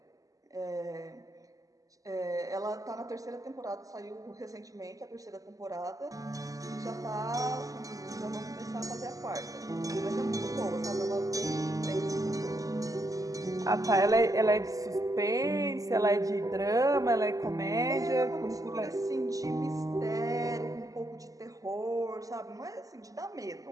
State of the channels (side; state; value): left; late; 0.17 ms